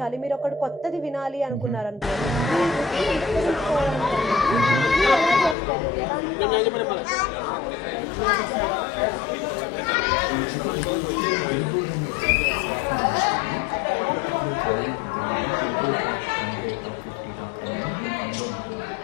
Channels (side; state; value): right; drops out; at 5.6 s